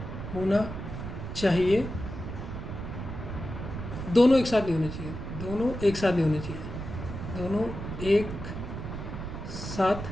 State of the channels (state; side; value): noise; right; rumble, 7 dB below the sound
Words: चाहिए, दोनों एक साथ नहीं होने चाहिए, दोनों एक साथ नहीं होने चाहिए, दोनों एक